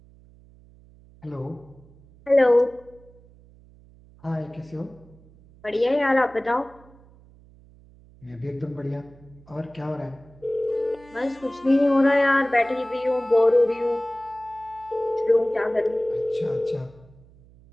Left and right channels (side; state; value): right; noise; hum, 25 dB below the sound